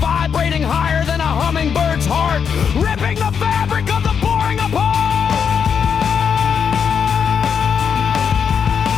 higher than a hummingbird's heart, ripping the fabric of the boring apart.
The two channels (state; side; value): quieter; right; 7.0 dB